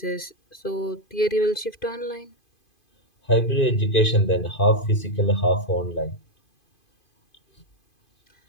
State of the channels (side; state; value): right; late; 2.5 ms